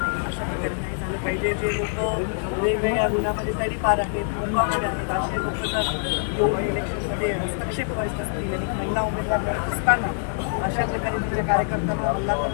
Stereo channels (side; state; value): right; silent; 56 dB below the other